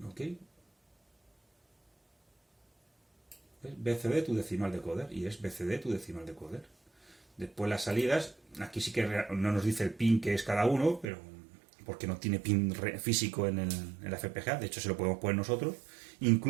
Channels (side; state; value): left; drops out; at 11.1 s